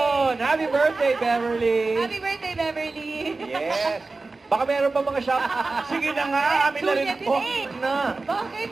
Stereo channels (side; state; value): left; quieter; 3.6 dB